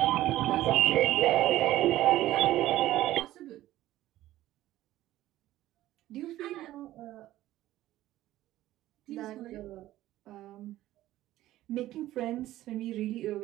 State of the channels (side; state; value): left; quieter; 14.9 dB